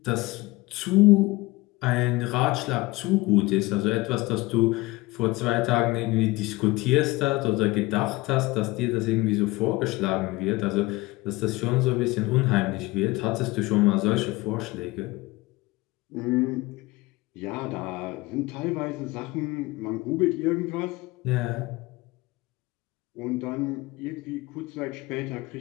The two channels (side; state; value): right; quieter; 21.2 dB